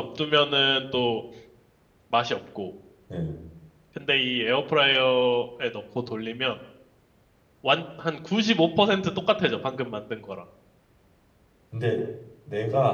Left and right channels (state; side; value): identical; both; correlation 1.00